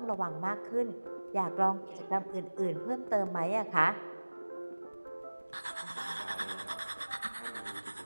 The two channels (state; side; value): inverted; both; correlation -1.00